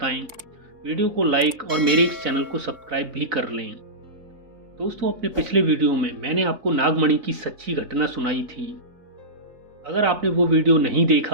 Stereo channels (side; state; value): left; late; 3.7 ms